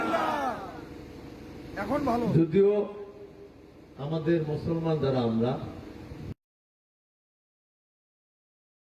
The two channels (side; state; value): both; identical; correlation 1.00